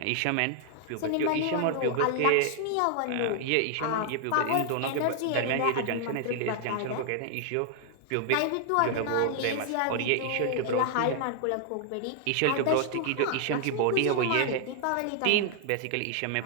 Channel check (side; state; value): both; different; correlation 0.00